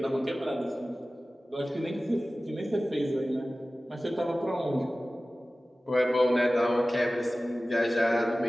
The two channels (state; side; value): normal; both; correlation 0.96